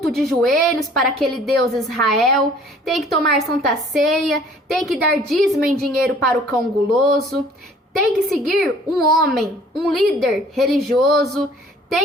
de joelhos para aquele Deus Israel, tem que tomar santa ceia, tem que dar dízimo em dinheiro para o cão guloso, tem que seguir um homem, um líder religioso,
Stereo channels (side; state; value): both; normal; correlation 0.54